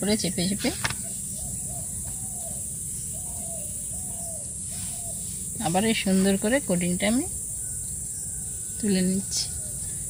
চেপে চেপে আবার এই সুন্দর করে কোটিংটা আমি তুলে নিচ্ছি।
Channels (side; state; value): both; identical; correlation 1.00